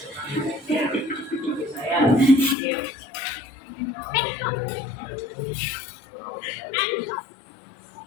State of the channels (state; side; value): drops out; right; at 2.6 s